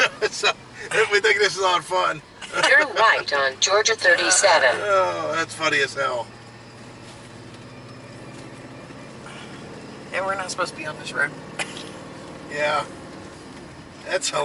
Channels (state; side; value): identical; both; correlation 1.00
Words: So we think this is on fun. Turn right on Georgia 37. Oh, that's funny as hell. And we're not supposed to be on this road. Yeah. That's